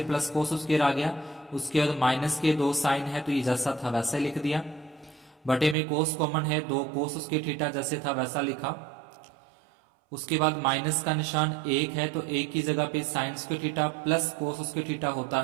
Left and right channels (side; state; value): left; drops out; at 5.8 s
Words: plus cos square आ गया। उसके बाद माइनस के 2 साइन है तो ये जैसा था वैसा लिख दिया। बटे में कोस कॉमन है, 2 कोस स्क्वायर थीटा जैसे था वैसा लिखा। उसके बाद माइनस का निशान 1 है तो 1 की जगह पे sine square theta plus cos square theta होता